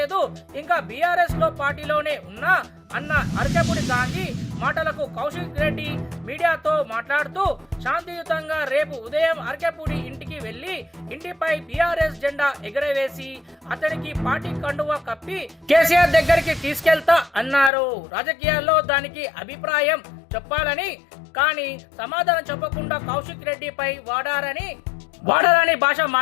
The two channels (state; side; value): drops out; right; at 17.7 s